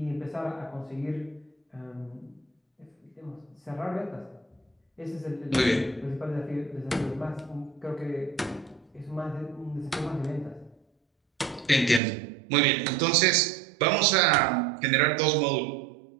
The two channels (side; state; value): left; drops out; at 12.0 s